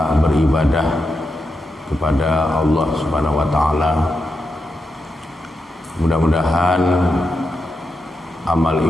beribadah kepada Allah Subhanahu wa taala. Mudah-mudahan amal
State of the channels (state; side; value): normal; both; correlation 0.86